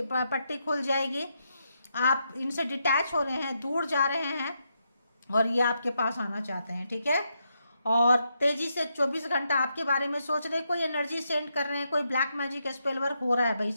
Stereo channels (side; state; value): both; inverted; correlation -0.81